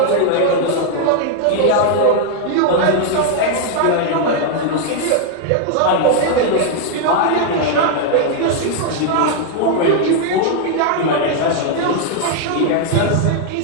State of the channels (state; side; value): different; both; correlation 0.00